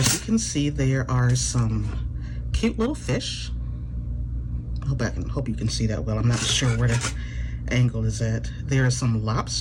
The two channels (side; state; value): both; identical; correlation 1.00